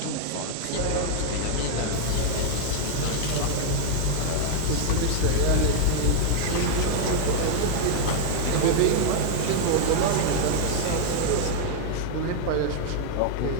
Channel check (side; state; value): both; different; correlation 0.00